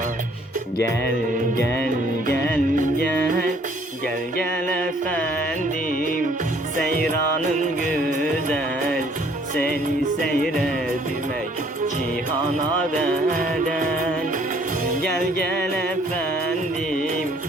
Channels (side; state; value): both; normal; correlation 0.60